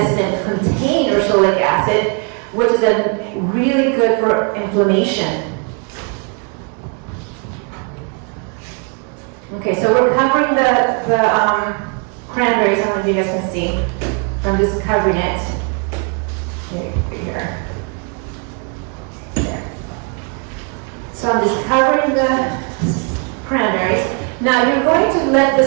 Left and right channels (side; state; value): left; quieter; 36.6 dB